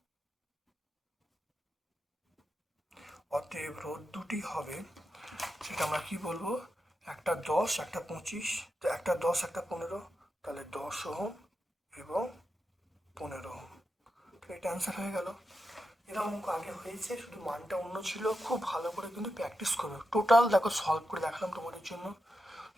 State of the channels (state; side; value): normal; both; correlation 0.88